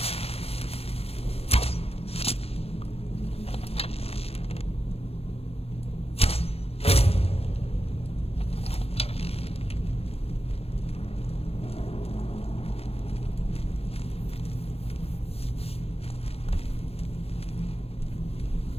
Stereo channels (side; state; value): right; late; 0.29 ms